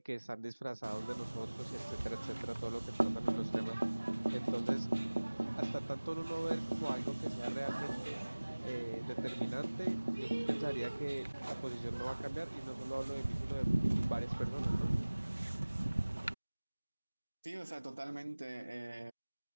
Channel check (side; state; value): both; inverted; correlation -1.00